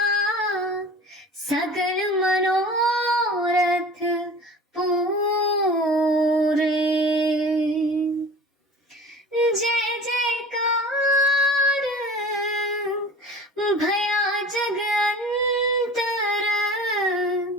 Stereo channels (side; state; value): both; normal; correlation 0.40